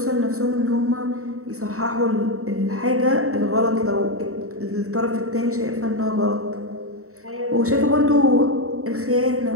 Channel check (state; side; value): late; left; 0.64 ms